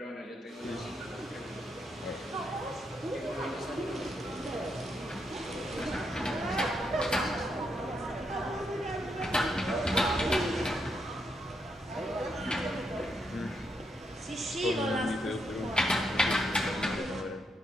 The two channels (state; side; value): normal; both; correlation 0.80